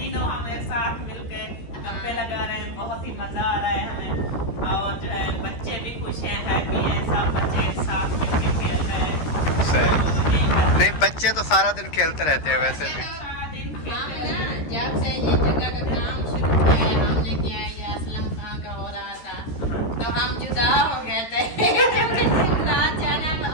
हम एक साथ मिलकर गप्पे लगा रहे हैं, बहुत ही मजा आ रहा है हमें। और जो है बच्चे भी खुश हैं, हैप्पी हैं, सब बच्चे साथ मिलकर खेल रहे हैं। सही। नहीं, बच्चे तो सारा दिन खेलते रहते हैं वैसे भी। जब से ये जगह का काम शुरू किया है हमने किया है, ये असलम खां का हो रहा था, तो हम जुदा हो गए थे। दिन रात जाना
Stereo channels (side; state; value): right; late; 13 ms